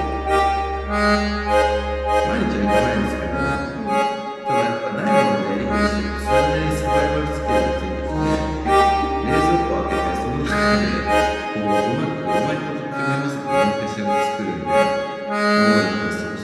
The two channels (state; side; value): identical; both; correlation 1.00